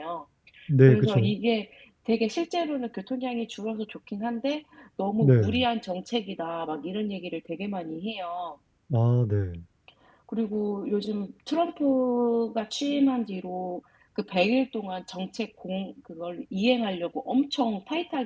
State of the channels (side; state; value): both; identical; correlation 1.00